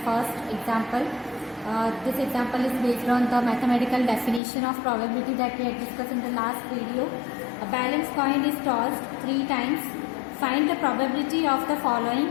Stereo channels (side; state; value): right; drops out; at 4.4 s